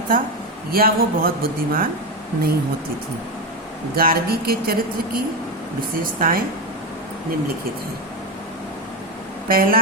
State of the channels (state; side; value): normal; both; correlation 0.12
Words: था या वो बहुत बुद्धिमान नहीं होती थी। गार्गी के चरित्र की विशेषताएं निम्नलिखित हैं। पहला